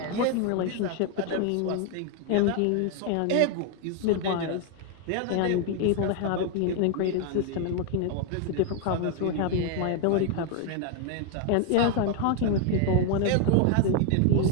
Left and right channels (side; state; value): both; different; correlation 0.00